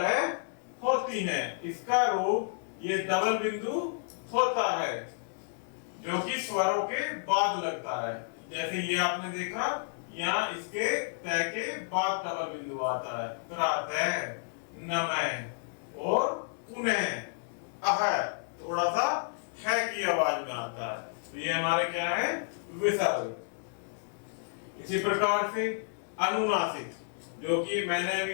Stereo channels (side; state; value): right; silent; digital silence